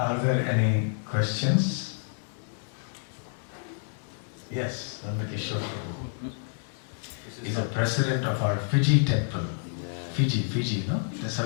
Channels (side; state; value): right; silent; digital silence